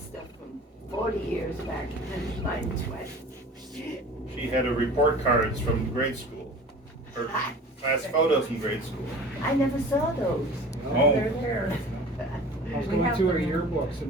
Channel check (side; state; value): both; normal; correlation 0.41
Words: from 40 years back and mine 20. She had a report cards from grade school, or class photos from grade school. I never saw those. Oh. They're there. I was going through her yearbooks in